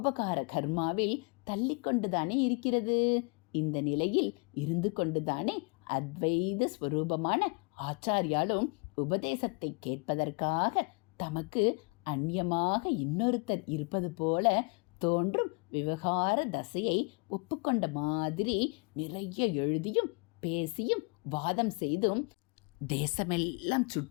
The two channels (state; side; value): quieter; right; 32.3 dB